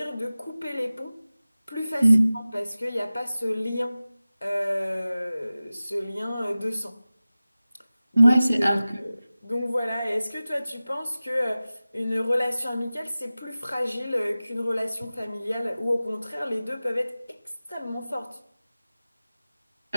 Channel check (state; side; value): inverted; both; correlation -0.97